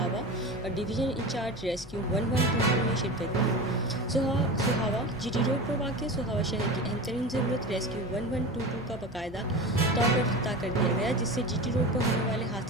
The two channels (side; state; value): both; normal; correlation 0.29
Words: اور ڈویژن انچارج ریسکیو 112 نے شرکت کی۔ سہاوا جی ٹی روڈ پر واقع سہاوا شہر کی اہم ترین ضرورت ریسکیو 112 کا باقاعدہ طور پر افتتاح کر دیا گیا، جس سے جی ٹی روڈ پر ہونے والے